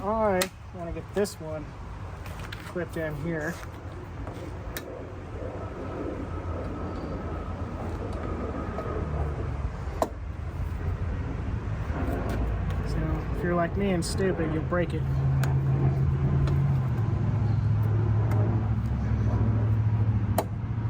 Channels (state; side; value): identical; both; correlation 1.00